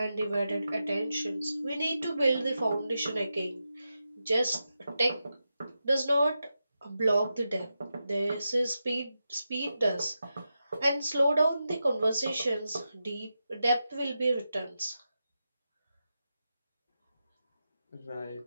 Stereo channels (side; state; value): both; inverted; correlation -0.89